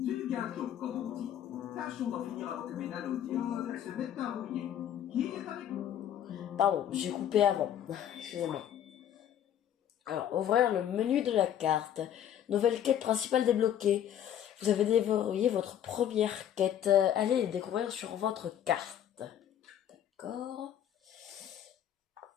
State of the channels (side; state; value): right; quieter; 10.3 dB